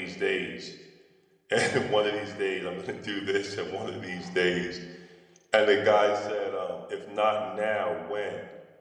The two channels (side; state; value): both; identical; correlation 1.00